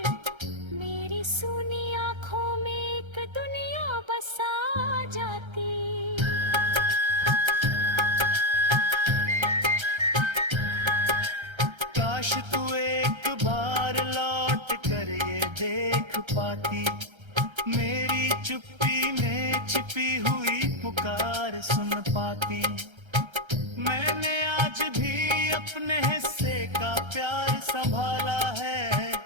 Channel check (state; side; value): late; left; 1.3 ms